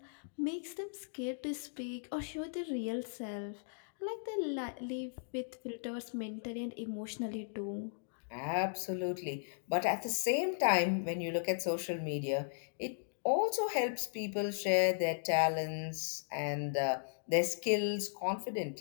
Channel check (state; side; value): silent; right; digital silence